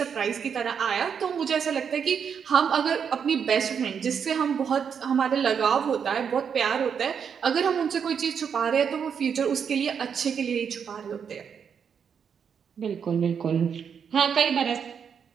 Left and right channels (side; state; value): left; quieter; 7.1 dB